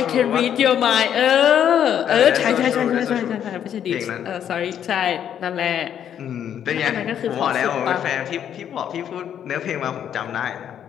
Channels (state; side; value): quieter; right; 9.4 dB